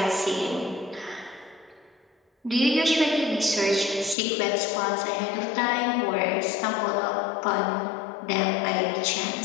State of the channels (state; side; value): drops out; right; at 4.2 s